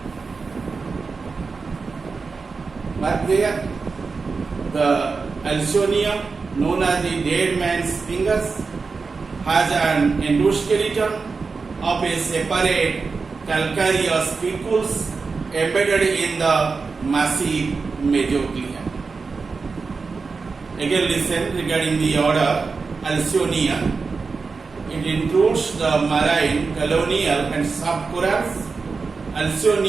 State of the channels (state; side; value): quieter; left; 4.6 dB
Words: Mark there the Alcyonium, known as the dead man's fingers, has an endoskeleton of a separate calcareous spicules embedded in the massive mesoglea. Again listen regarding the order Alcyonea. It includes the marine, colonial, and soft corals.